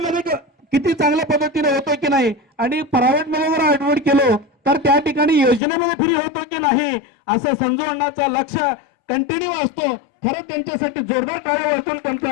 किती चांगल्या पद्धतीने होतो की नाही आणि प्रायव्हेटमध्ये जर ऍडमिट केलो तर त्या ठिकाणी योजनेमध्ये फ्री होतो की नाही असं संजू अण्णाचं लक्ष कंटिन्यू असतो. खरं त्यांच्यासाठी जोरदार टाळ्या वाजवून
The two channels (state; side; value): drops out; right; at 5.6 s